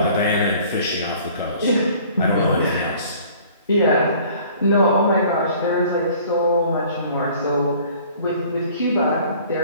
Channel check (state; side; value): inverted; both; correlation -0.52